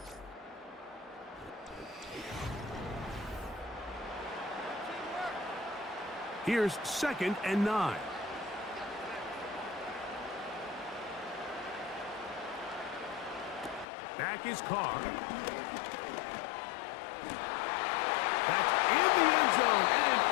Here's 2nd and 9. Back is Carr. That's in the end zone and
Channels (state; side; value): drops out; right; at 13.9 s